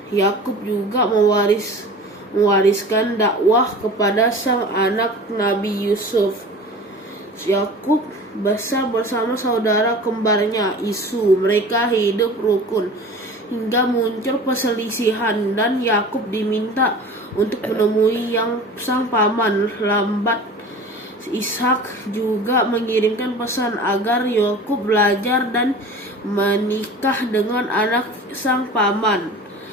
Yakub juga mewariskan dakwah kepada sang anak Nabi Yusuf. Yakub besar bersama saudara kembarnya Isu. Mereka hidup rukun hingga muncul perselisihan, dan Yakub diminta untuk menemui sang paman lambat. Ishak juga mengirimkan pesan agar Yakub belajar dan menikah dengan anak sang paman.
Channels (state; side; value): normal; both; correlation 0.39